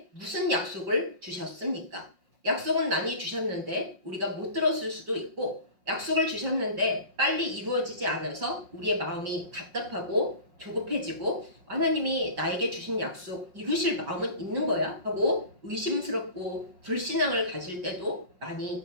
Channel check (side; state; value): left; late; 5.5 ms